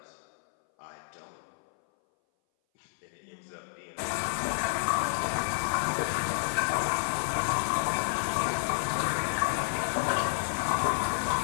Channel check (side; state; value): right; silent; 58 dB below the other